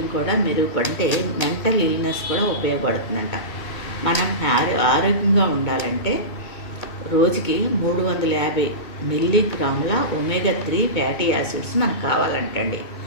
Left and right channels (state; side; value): late; right; 2.2 ms